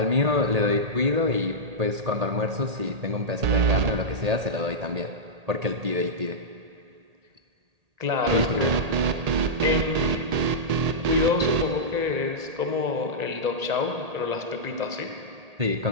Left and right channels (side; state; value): left; late; 1.8 ms